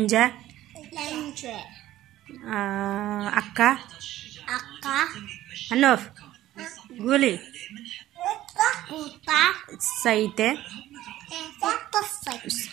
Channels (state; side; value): quieter; left; 14.4 dB